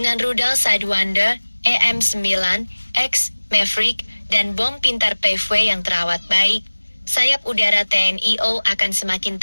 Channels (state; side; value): inverted; both; correlation -1.00